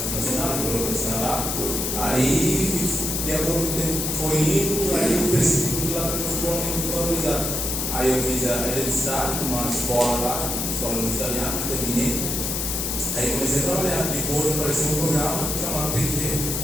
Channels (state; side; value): noise; left; hiss, 1 dB below the sound